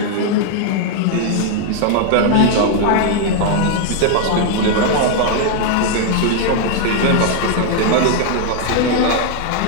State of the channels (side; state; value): both; different; correlation 0.00